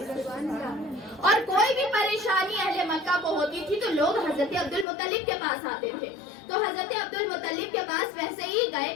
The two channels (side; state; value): right; drops out; at 4.9 s